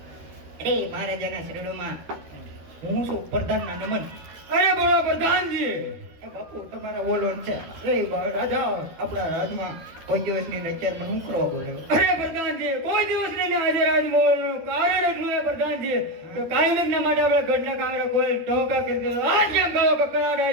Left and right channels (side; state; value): left; late; 13 ms